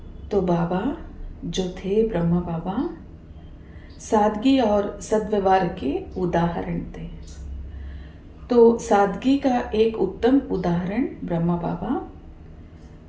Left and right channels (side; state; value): both; identical; correlation 1.00